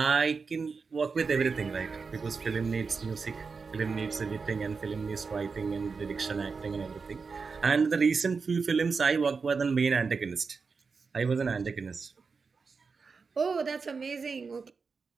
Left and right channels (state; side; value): quieter; left; 4.9 dB